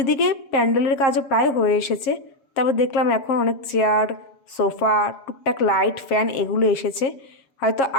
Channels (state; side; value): late; right; 7.4 ms